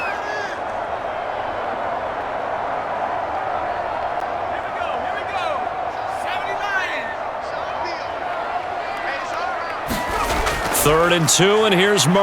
Third and 2, and here's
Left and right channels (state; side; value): identical; both; correlation 1.00